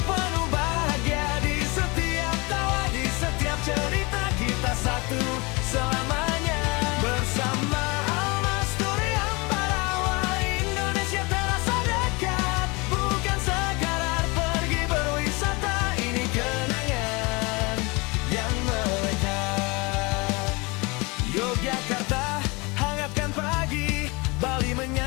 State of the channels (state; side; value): quieter; right; 26.7 dB